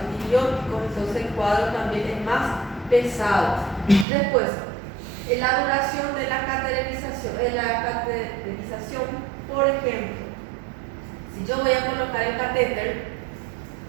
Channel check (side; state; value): left; drops out; at 4.0 s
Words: entonces el cuadro también es más pesado. Después, la duración de la cateterización, por ejemplo, si yo voy a colocar el catéter